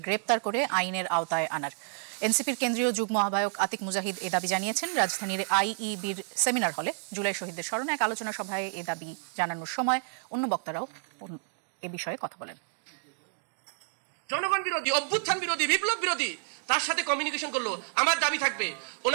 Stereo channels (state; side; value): silent; left; digital silence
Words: গ্রেপ্তার করে আইনের আওতায় আনার। এনসিপির কেন্দ্রীয় যুগ্ম আহ্বায়ক আতিক মুজাহিদ এ দাবি জানিয়েছেন রাজধানীর আইইবির সেমিনার হলে জুলাই শহীদদের স্মরণে এক আলোচনা সভায় এ দাবি জানানোর সময় অন্য বক্তারাও এ বিষয়ে কথা বলেন। জনগণ বিরোধী, অভ্যুত্থান বিরোধী, বিপ্লব বিরোধী তার সাথে কমিউনিকেশন করলো। আমার দাবি থাকবে